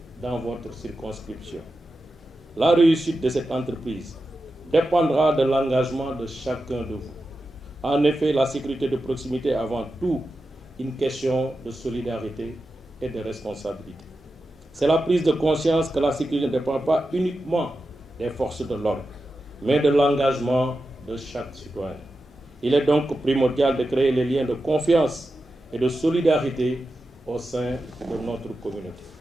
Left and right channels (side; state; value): both; normal; correlation 0.91